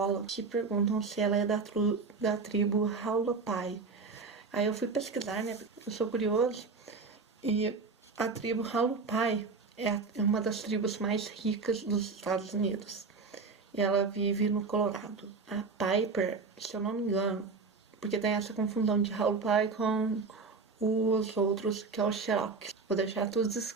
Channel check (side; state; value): left; quieter; 4.5 dB